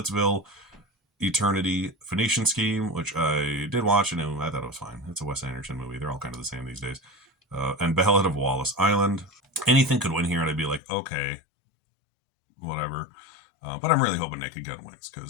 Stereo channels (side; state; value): right; drops out; at 10.8 s